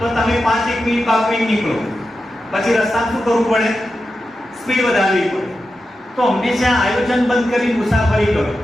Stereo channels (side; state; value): both; normal; correlation 0.90